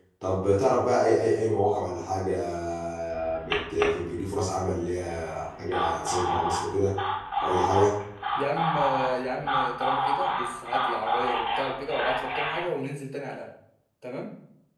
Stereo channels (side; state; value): both; identical; correlation 1.00